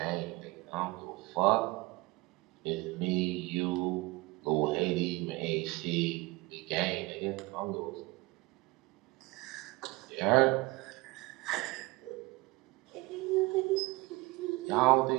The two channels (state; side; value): quieter; left; 22.4 dB